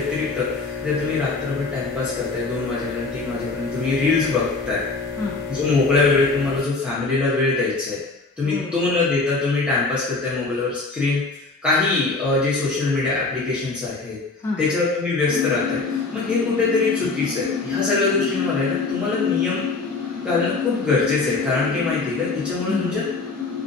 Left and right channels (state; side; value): quieter; right; 3.7 dB